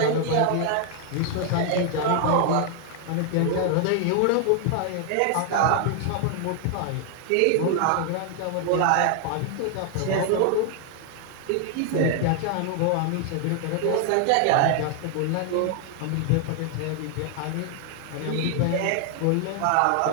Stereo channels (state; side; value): different; both; correlation 0.00